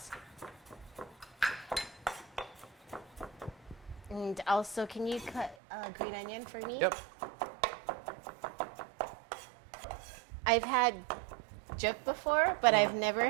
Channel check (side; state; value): left; drops out; at 5.6 s